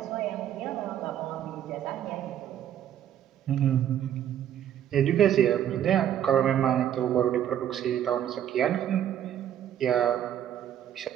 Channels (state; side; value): quieter; left; 10.5 dB